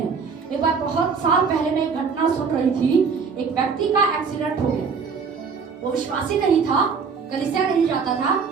एक बार बहुत साल पहले मैं एक घटना सुन रही थी, एक व्यक्ति का एक्सीडेंट हो गया। वो विश्वासी नहीं था, कलीसिया नहीं जाता था,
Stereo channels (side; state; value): left; quieter; 5.5 dB